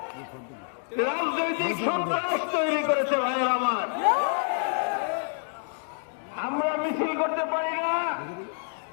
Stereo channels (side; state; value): right; silent; digital silence